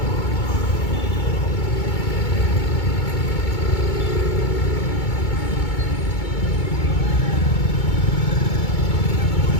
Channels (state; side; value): late; right; 2.2 ms